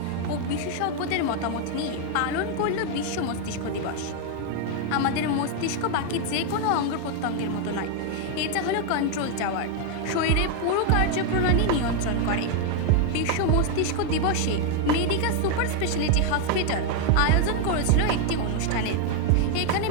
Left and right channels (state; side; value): different; both; correlation 0.00